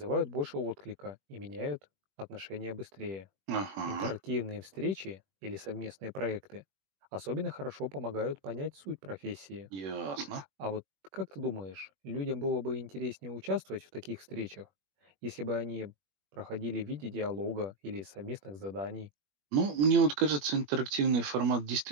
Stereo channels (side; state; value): left; late; 21 ms